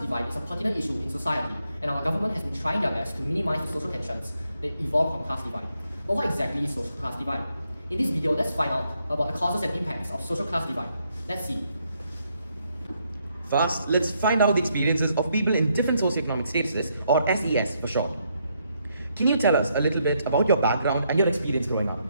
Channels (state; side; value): inverted; both; correlation -0.76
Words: is a pertinent issue in society, and our government has been trying their best to minimize the social tensions that evolve from class divide. But what exactly is social class divide? In this video, let's find out about the causes and impacts of social class divide. Let's see. First, let's find out the experiences of people in different socioeconomic statuses, or SES for short. Can you tell us a little bit about your background and your experience growing up?